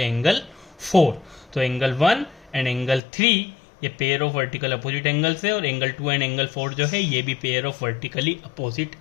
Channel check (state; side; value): drops out; right; at 3.0 s